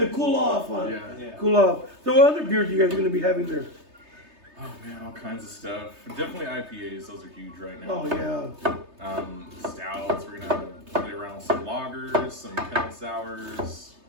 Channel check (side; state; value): left; late; 3.3 ms